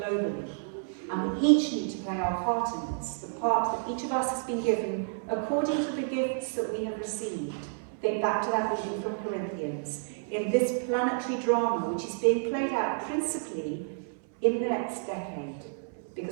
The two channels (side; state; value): left; silent; 58 dB below the other